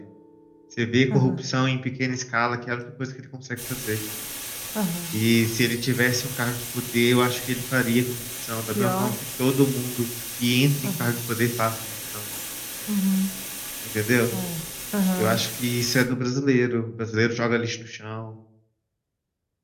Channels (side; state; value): both; identical; correlation 1.00